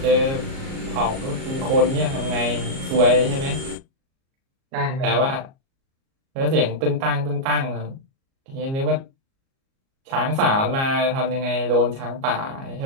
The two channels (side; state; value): left; late; 37 ms